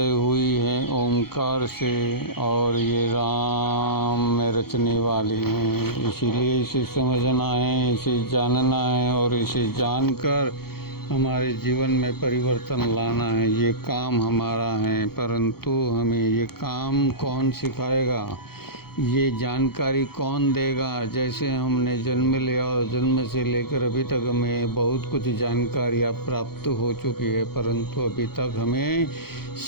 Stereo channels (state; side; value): late; right; 0.95 ms